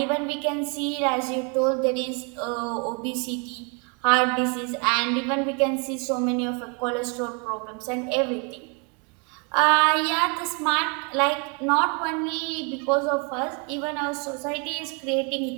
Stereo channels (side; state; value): left; quieter; 35.1 dB